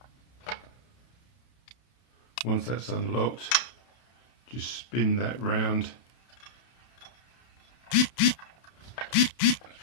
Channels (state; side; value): late; right; 31 ms